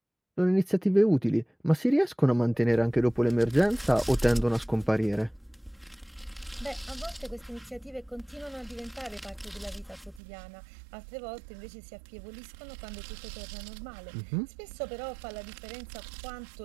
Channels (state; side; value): drops out; left; at 10.2 s